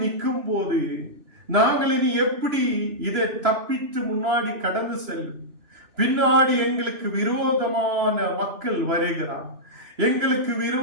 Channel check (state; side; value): late; left; 3.0 ms